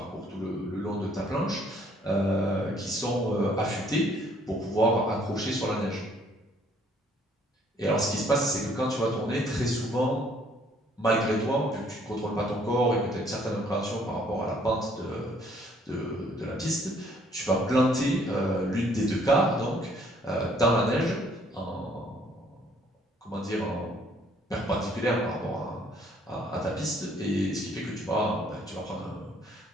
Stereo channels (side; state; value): both; normal; correlation 0.63